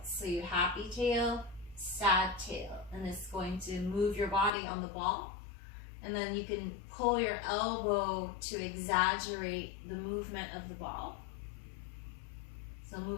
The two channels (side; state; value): right; drops out; at 4.5 s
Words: So you happy tail, sad tail. And it's going to move your body on the ball. And then you can pull your elbow to exaggerate the movement of the ball. So